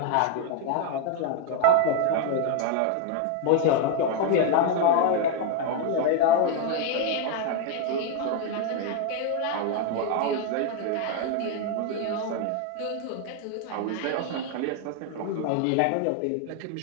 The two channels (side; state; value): both; different; correlation 0.01